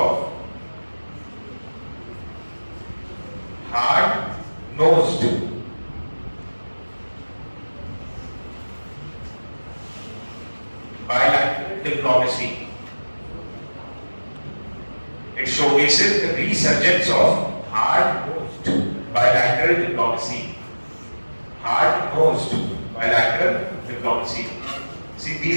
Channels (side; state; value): both; inverted; correlation -1.00